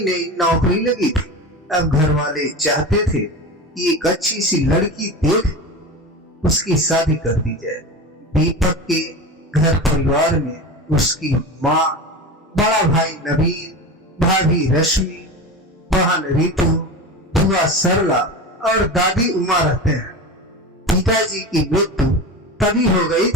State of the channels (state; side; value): normal; both; correlation 0.27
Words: नई नौकरी लगी थी। अब घर वाले चाहते थे कि एक अच्छी सी लड़की देख उसकी शादी कर दी जाए। दीपक के घर परिवार में उसकी माँ, बड़ा भाई नवीन, भाभी रश्मि, बहन रितु, बुआ सरला और दादी उमा रहते हैं। पिताजी की मृत्यु तभी हो गई